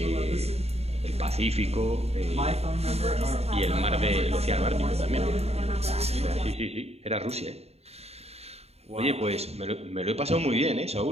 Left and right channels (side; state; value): left; late; 0.30 ms